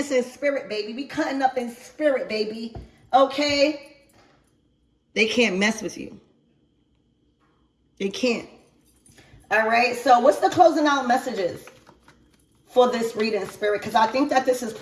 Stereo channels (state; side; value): identical; both; correlation 1.00